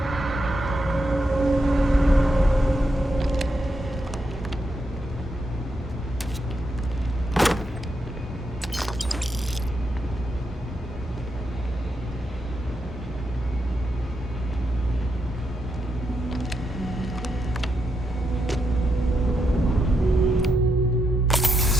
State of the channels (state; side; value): normal; both; correlation 0.82